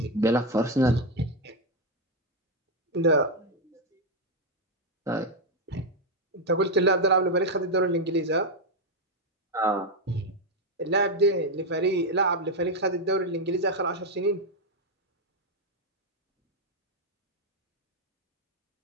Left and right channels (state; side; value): normal; both; correlation 0.04